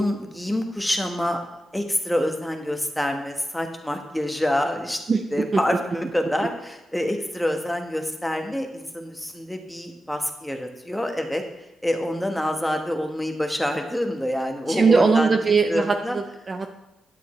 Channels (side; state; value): both; normal; correlation 0.91